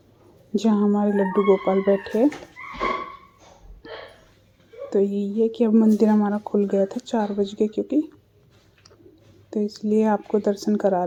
जहाँ हमारे लड्डू गोपाल बैठे हैं। तो यही है कि अब मंदिर हमारा खुल गया था 4 बज के, क्योंकि तो इसलिए आपको दर्शन करा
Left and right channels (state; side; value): identical; both; correlation 1.00